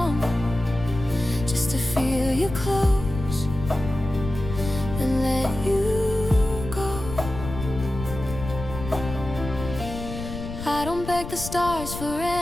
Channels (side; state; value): left; noise; rumble, 9 dB below the sound